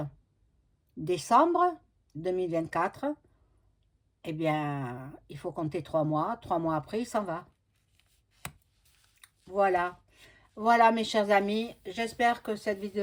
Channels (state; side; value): identical; both; correlation 1.00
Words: décembre 2024. Eh bien, il faut compter 3 mois. 3 mois après, il s'en va. Voilà. Voilà, mes chers amis. J'espère que cette